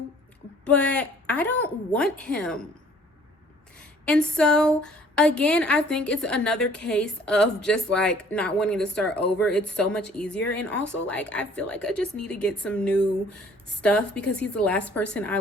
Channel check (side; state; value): both; normal; correlation 0.55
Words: but I don't want him. And so, again, I think it's another case of just, like, not wanting to start over. It's so much easier, and also, like, I feel like I just need to get some new stuff because he's the last person I,